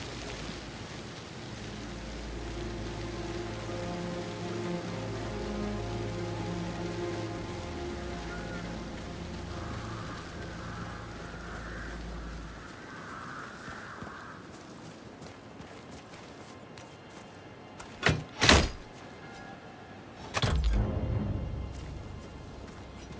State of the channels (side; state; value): both; identical; correlation 1.00